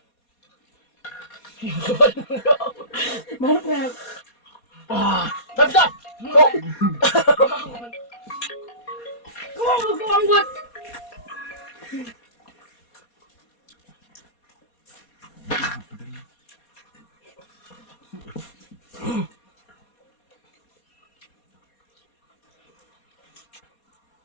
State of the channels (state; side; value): late; right; 4.2 ms